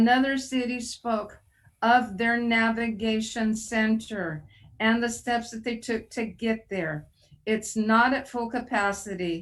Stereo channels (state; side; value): identical; both; correlation 1.00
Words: city spoke of their navigation center and the steps that they took to get there. It's not at full